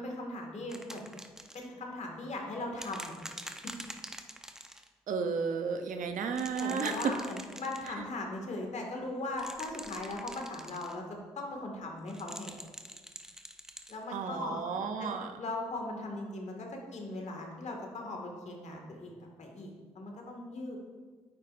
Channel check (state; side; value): normal; both; correlation 0.47